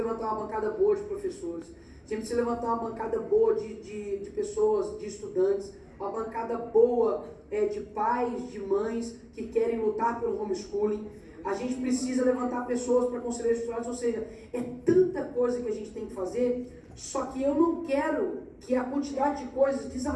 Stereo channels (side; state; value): both; identical; correlation 1.00